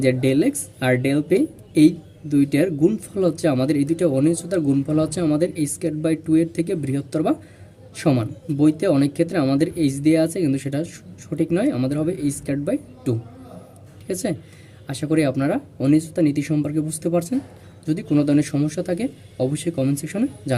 যে ডেল এক্স আর ডেল পি, এই দুইটার গুণফল হচ্ছে আমাদের, এই দুইটা অনিশ্চয়তার গুণফল হচ্ছে আমাদের স্কয়ার/2 এর থেকে বৃহত্তর বা সমান। বইতে অনেক ক্ষেত্রে আমাদের এইচ দেওয়া আছে, কিন্তু সেটা সঠিক নয়, আমাদের হবে স্কয়ার/2। ঠিক আছে। আশা করি আপনারা অনিশ্চয়তা নীতি সম্পর্কে বুঝতে পারছেন। যদি কোনো ধরনের সমস্যা থাকে অবশ্যই কমেন্ট সেকশনে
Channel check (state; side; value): identical; both; correlation 1.00